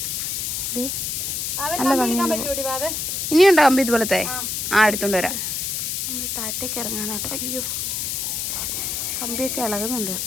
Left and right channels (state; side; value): noise; left; hiss, 2 dB below the sound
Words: നല്ല ഭംഗി. ഇനിയുണ്ടോ കമ്പി ഇതുപോലത്തെ? എടുത്തോണ്ട് വരാം. നമ്മൾ താഴത്തേക്ക് ഇറങ്ങാനാട്ടോ. അയ്യോ, കമ്പിയൊക്കെ ഇളകുന്നുണ്ട്.